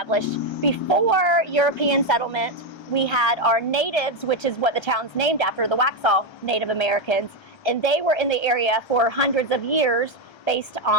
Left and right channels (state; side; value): late; right; 1.3 ms